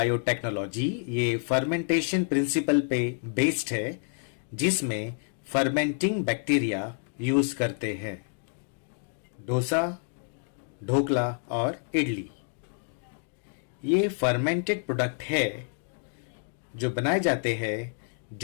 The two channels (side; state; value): right; silent; 59 dB below the other